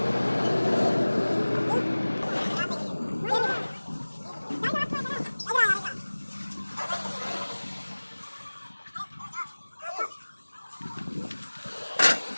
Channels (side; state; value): both; inverted; correlation -1.00